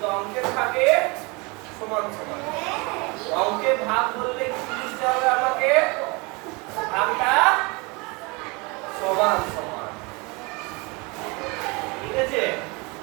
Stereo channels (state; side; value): quieter; left; 27.7 dB